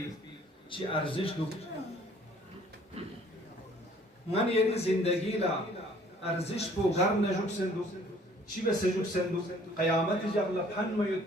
چی ارزش دو من یعنی زندگی لا ارزش بو غر نجوک سندو چی به سجوک سندو قیامت جغل پن میوت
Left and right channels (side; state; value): both; normal; correlation 0.56